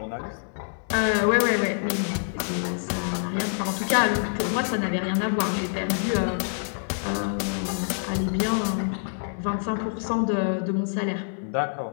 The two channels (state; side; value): silent; right; 61 dB below the other